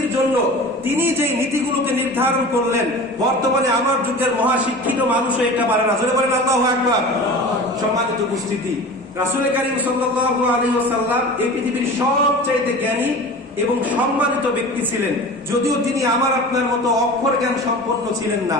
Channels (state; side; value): normal; both; correlation 0.36